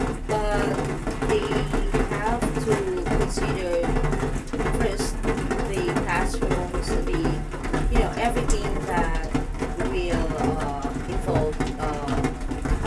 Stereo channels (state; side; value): identical; both; correlation 1.00